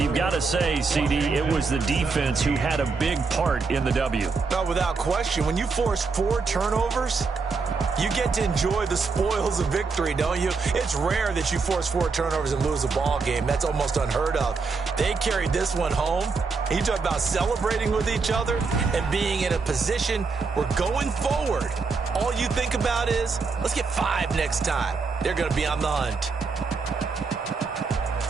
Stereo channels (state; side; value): quieter; left; 4.6 dB